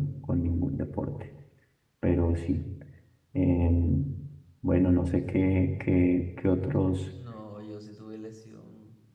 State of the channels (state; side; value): identical; both; correlation 1.00